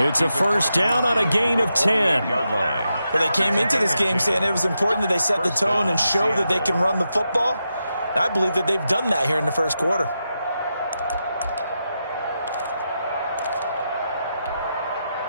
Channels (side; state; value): both; inverted; correlation -0.87